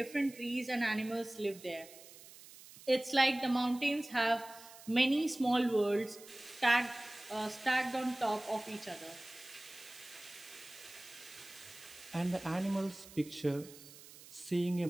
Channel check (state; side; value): noise; right; hiss, 18 dB below the sound